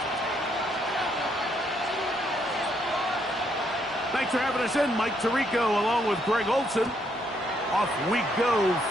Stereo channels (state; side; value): normal; both; correlation 0.73